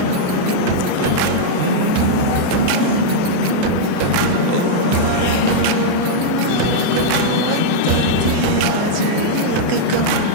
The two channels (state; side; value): different; both; correlation -0.02